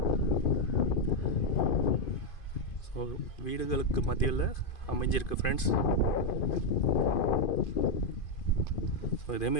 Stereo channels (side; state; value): right; late; 2.5 ms